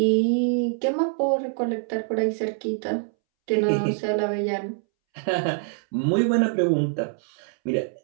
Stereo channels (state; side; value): silent; left; 62 dB below the other